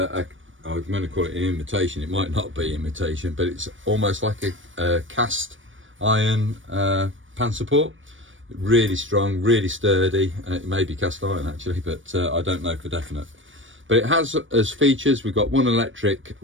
going to call it an imitation. It might not be imitation, but it's almost like a cast iron pan support. Really strong, really sturdy. It may be cast iron actually, but I don't know for definite. But it has as features, we've got one electric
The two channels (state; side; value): late; left; 0.56 ms